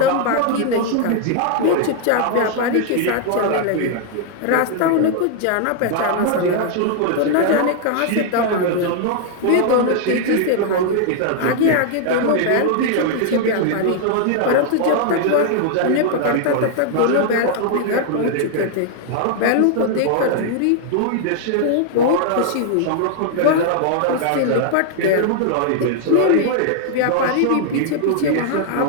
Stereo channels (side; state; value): both; different; correlation 0.00